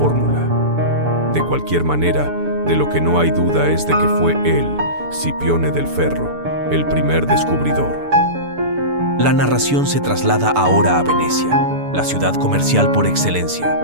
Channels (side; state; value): left; late; 6.9 ms